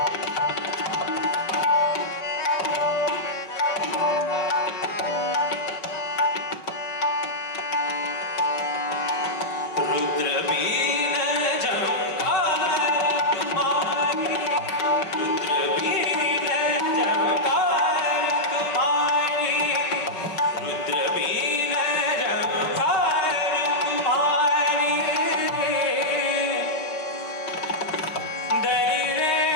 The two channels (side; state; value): right; late; 5.3 ms